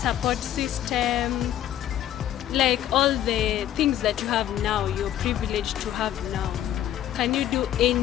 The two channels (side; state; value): right; quieter; 11.7 dB